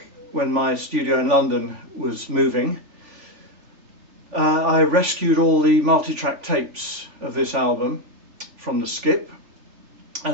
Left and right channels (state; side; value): late; left; 3.5 ms